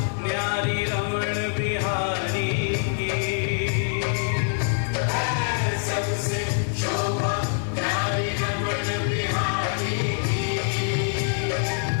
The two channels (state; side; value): silent; right; 55 dB below the other